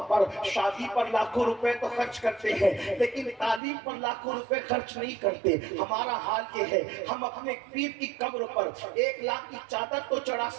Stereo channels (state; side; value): drops out; left; at 3.6 s